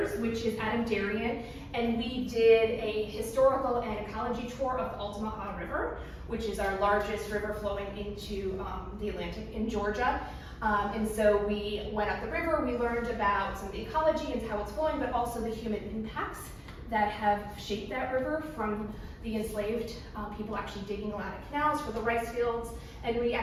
which is Adam Darien, and we did a historical and ecology tour of the Altamaha River, which is our largest river flowing into the Atlantic in Georgia. And so we went up the river, we learned about some of the ecology and how it's flowing, but also the human impacts that have shaped that river, from the enslaved people actually digging a lot of canals for the rice fields. And we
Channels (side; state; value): both; identical; correlation 1.00